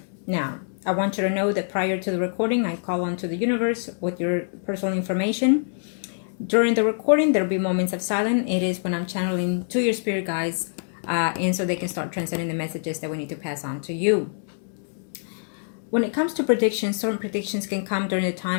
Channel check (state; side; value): silent; right; digital silence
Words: Now, I want you to know that prior to the recording, I call on to the universe with your personal information. During the recording, there will be moments of silence. It is when I'm channeling to your spirit guides, and so they can start transmitting the messages that we need to pass on to you. When it comes to predictions, certain predictions can come during the